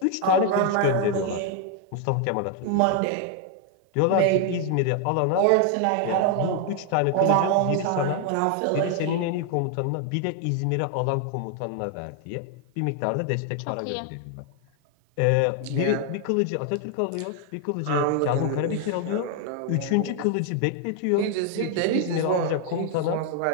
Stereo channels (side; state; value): both; different; correlation 0.00